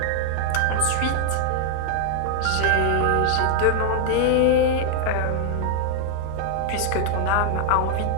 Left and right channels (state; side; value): different; both; correlation 0.00